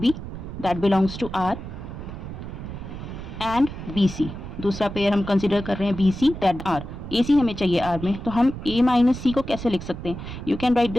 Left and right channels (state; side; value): noise; right; rumble, 9 dB below the sound